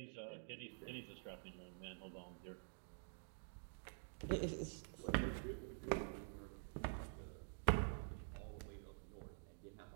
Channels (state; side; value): silent; left; digital silence